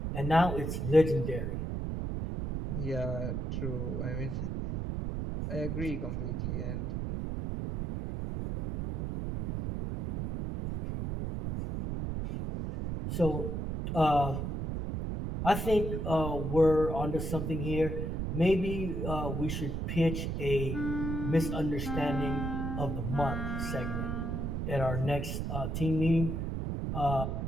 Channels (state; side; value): noise; right; rumble, 2 dB below the sound